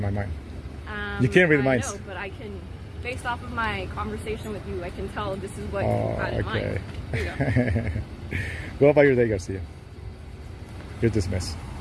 my mind. You can't read minds. I know, but I can, based off of my conversation with you, I can tell this is what Oh, you had in okay. mind. Here you go. Go about your day, Garcia. You're dismissed.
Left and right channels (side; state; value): both; identical; correlation 1.00